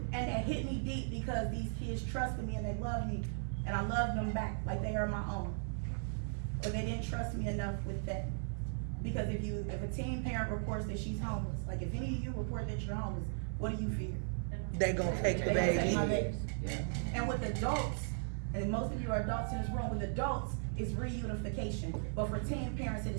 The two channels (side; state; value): left; silent; 53 dB below the other